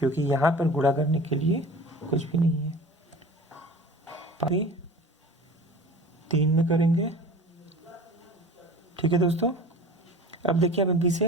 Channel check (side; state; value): both; normal; correlation 0.39